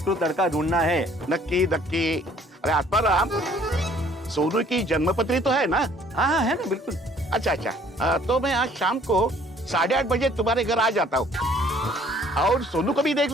लड़का ढूंढना है। नक्की नक्की। अरे आत्माराम, सोनू की जन्मपत्री तो है ना? हाँ हाँ है ना, बिल्कुल। अच्छा अच्छा, तो मैं आज शाम को 8:30 बजे तुम्हारे घर आ जाता हूँ और सोनू को भी देख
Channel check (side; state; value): both; normal; correlation 0.58